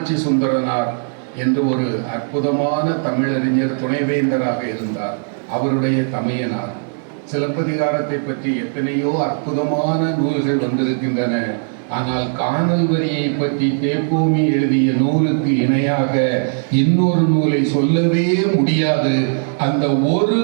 சுந்தரனார் என்று ஒரு அற்புதமான தமிழறிஞர் துணைவேந்தராக இருந்தார். அவருடைய தமையனார். சிலப்பதிகாரத்தை பற்றி எத்தனையோ அற்புதமான நூல்கள் வந்திருக்கின்றன. ஆனால் காணல் வரியை பற்றி தேப்போமி எழுதிய நூலுக்கு இணையாக இன்னொரு நூலை சொல்லவே முடியாது. அந்த ஒரு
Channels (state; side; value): silent; left; digital silence